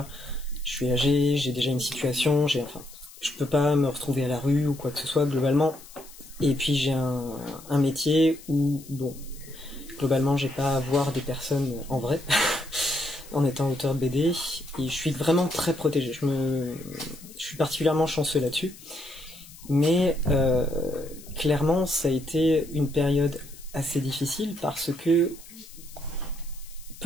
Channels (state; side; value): noise; left; hiss, 19 dB below the sound